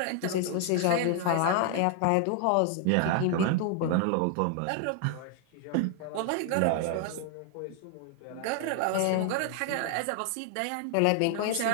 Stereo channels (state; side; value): different; both; correlation 0.00